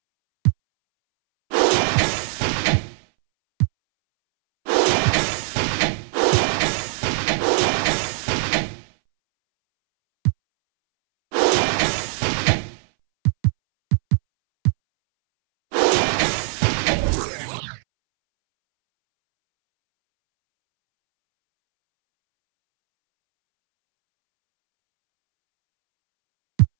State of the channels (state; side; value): silent; left; 64 dB below the other